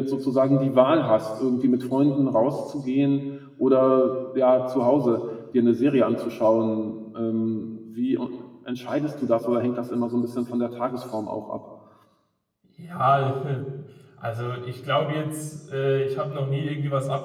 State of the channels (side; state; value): both; identical; correlation 1.00